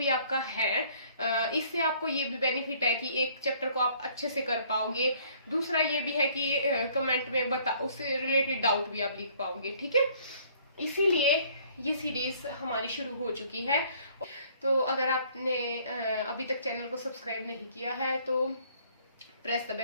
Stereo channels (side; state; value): both; inverted; correlation -0.59